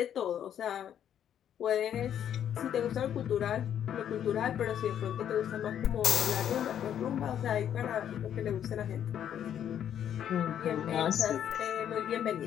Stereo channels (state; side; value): quieter; right; 9.7 dB